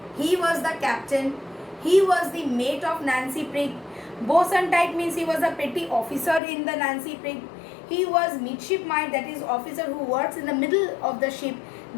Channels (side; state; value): right; drops out; at 6.4 s